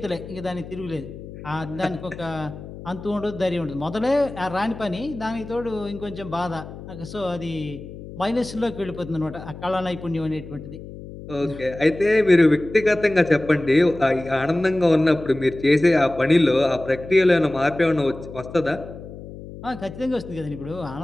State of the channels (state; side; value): noise; left; hum, 13 dB below the sound